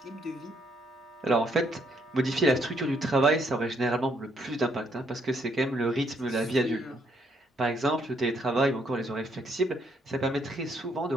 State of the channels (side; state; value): both; normal; correlation 0.71